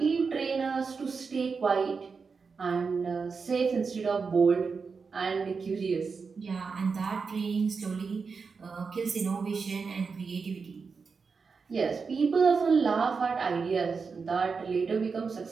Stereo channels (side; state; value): left; quieter; 5.1 dB